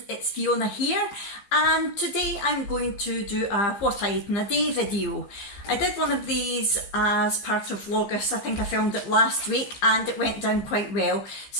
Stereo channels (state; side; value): late; right; 15 ms